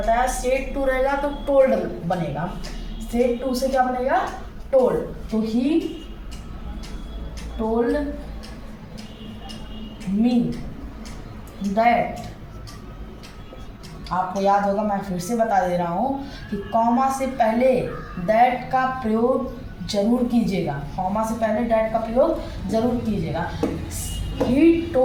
सेड टू रहेगा तो टोल्ड बनेगा। सेड टू से क्या बनेगा? टोल्ड। तो ही told me that, आपको याद होगा, मैं फिर से बता दे रहा हूँ कि कॉमा से पहले दैट का प्रयोग जरूर कीजिएगा, कॉमा से पहले दैट का प्रयोग जरूर कीजिएगा। He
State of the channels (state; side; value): identical; both; correlation 1.00